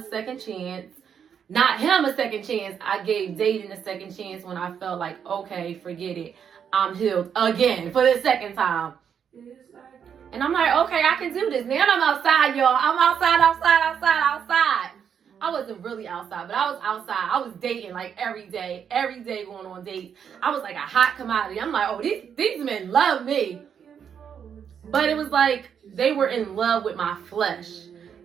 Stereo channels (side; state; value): left; quieter; 7.8 dB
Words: second chance. Not him a second chance. I gave dating a second chance when I felt like, okay, forget it. I'm healed again for the second time. And I'm like, okay, I can do this. Now I'm outside, y'all. I'm outside. I wasn't really outside, but I was outside. I was dating like every day going on dates. I was like a hot commodity. I'm like, oh, these men love me. But it was like they were in love with my flesh.